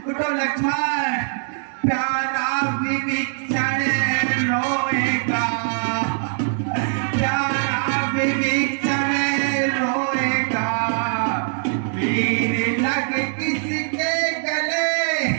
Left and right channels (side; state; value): left; silent; 64 dB below the other